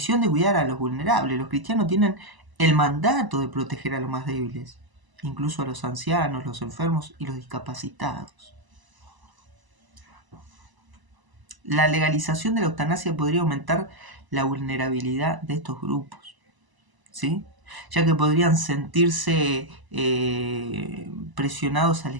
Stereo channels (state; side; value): late; left; 1.0 ms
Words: de cuidar a los vulnerables. Los cristianos tienen el mandato de proteger a los más débiles, incluso a los ancianos, los enfermos y los discapacitados. La legalización de la eutanasia podría aumentar la vulnerabilidad de estos grupos, ¿sí? Ya que podrían sentirse presionados a